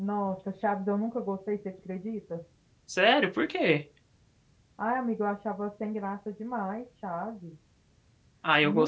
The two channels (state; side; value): identical; both; correlation 1.00